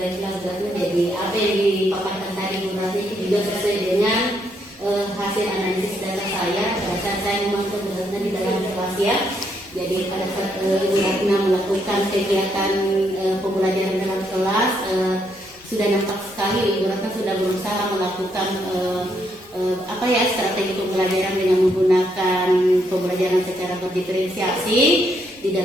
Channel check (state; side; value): normal; both; correlation 0.75